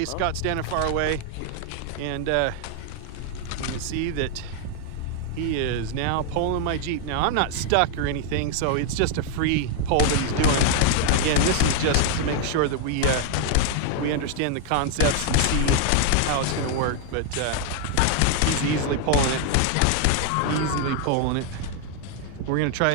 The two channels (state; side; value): different; both; correlation 0.00